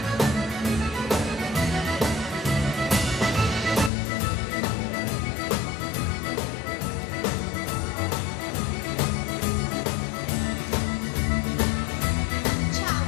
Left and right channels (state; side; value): drops out; right; at 3.9 s